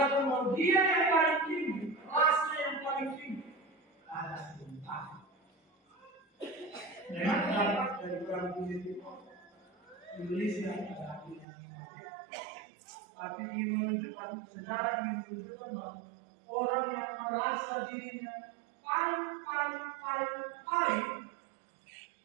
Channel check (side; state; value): left; drops out; at 11.5 s